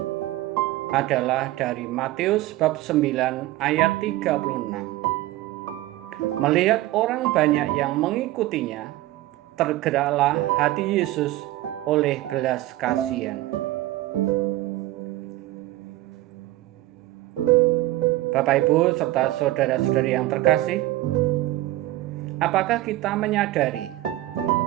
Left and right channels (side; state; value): left; quieter; 16.6 dB